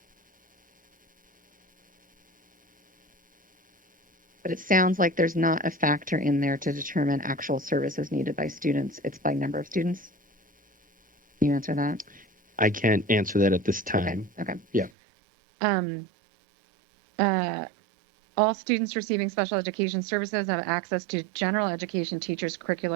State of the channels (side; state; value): left; drops out; at 14.9 s